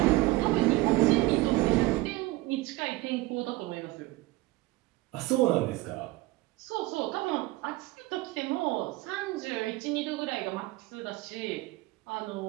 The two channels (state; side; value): quieter; left; 20.1 dB